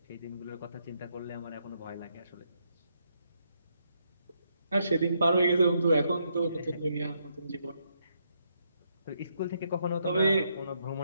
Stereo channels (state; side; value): inverted; both; correlation -0.77